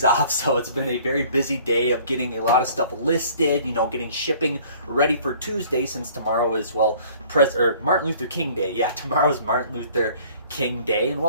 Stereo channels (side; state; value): both; inverted; correlation -0.53